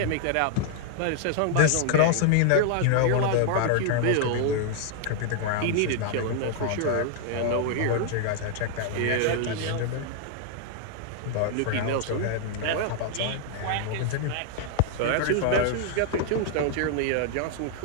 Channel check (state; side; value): different; both; correlation 0.00